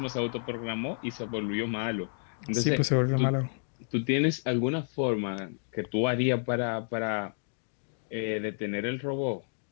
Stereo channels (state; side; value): silent; right; digital silence